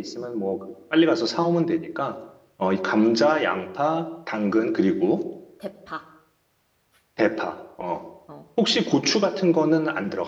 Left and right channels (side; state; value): both; identical; correlation 1.00